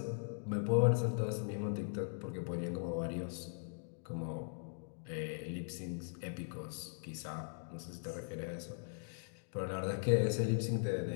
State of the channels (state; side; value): silent; right; digital silence